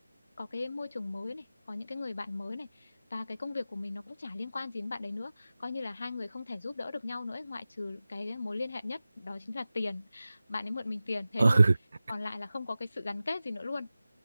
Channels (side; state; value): both; inverted; correlation -0.95